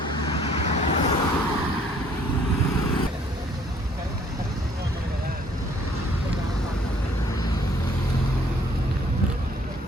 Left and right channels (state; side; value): normal; both; correlation 0.60